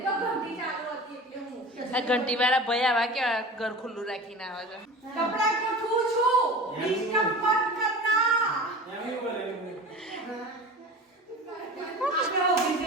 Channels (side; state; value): both; normal; correlation 0.36